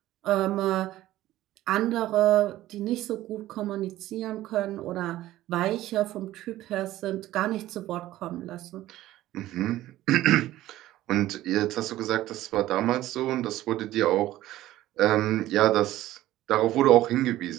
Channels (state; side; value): quieter; left; 15.0 dB